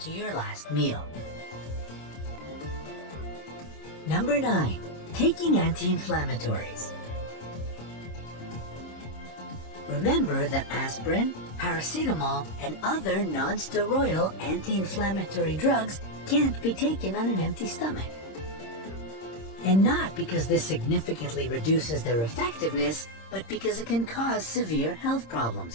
your last meal. Number 9. Taking anti-inflammatories. Remember that aspirin, paracetamol, and other non-steroidal anti-inflammatory drugs can't be taken on an empty stomach. And not because this significantly reduces their effectiveness, but because it can cause severe health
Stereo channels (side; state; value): right; late; 26 ms